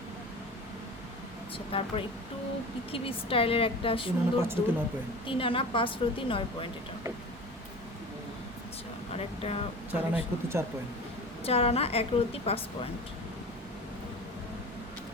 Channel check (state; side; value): normal; both; correlation 0.35